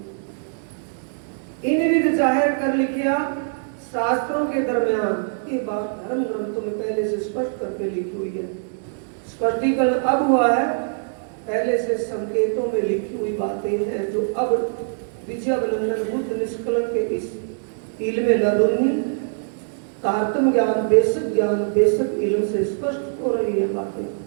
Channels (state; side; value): silent; left; digital silence